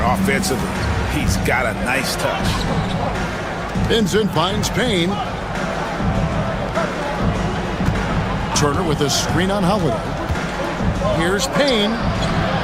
offensively. He's got a nice touch. Vincent finds Payne. Turner with a screen on Holiday. Here's Payne.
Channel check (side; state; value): both; identical; correlation 1.00